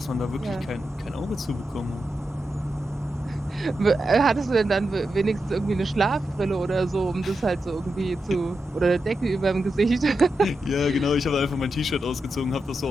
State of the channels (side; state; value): both; normal; correlation 0.88